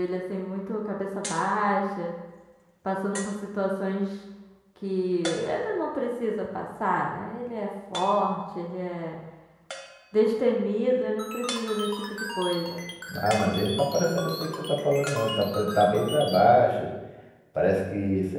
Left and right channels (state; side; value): identical; both; correlation 1.00